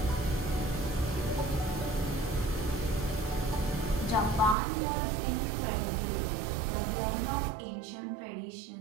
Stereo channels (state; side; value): drops out; left; at 4.5 s